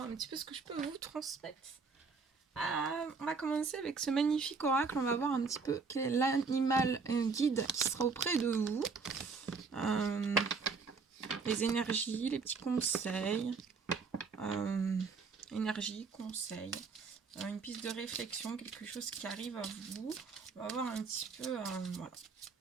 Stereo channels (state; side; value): quieter; left; 4.8 dB